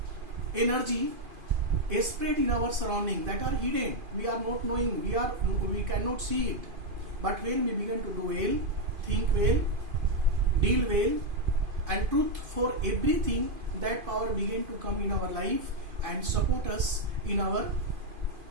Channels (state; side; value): late; left; 2.5 ms